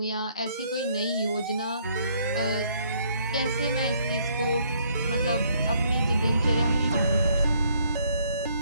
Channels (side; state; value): both; inverted; correlation -0.67